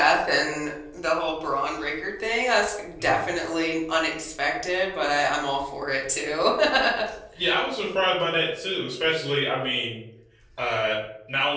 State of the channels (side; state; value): both; identical; correlation 1.00